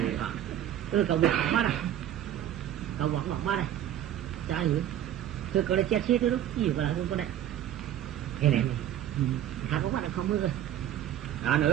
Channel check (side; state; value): left; quieter; 11.4 dB